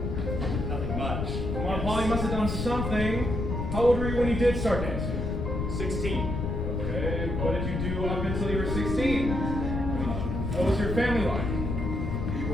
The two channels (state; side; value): noise; left; rumble, 2 dB below the sound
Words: nothing much. Come on, Paul, you must have done something. How old were you when you did start dancing? 16. Okay, what did you do up until you were 16? What was your family like? We